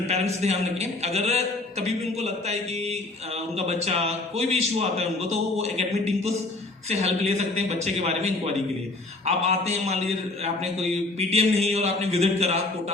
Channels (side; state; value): right; quieter; 3.1 dB